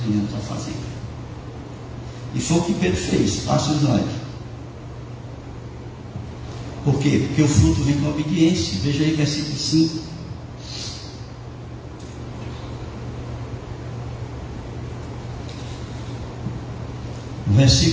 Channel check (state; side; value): identical; both; correlation 1.00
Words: venhamos a fazer. E foi o que Pedro fez. Passa o slide. Por quê? Porque o fruto vem com a obediência. Veja aí versículo 5. O